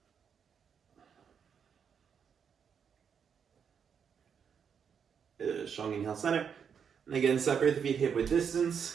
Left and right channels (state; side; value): quieter; left; 7.1 dB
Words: Good. Strong inhale, center. And again, separate the feet hip width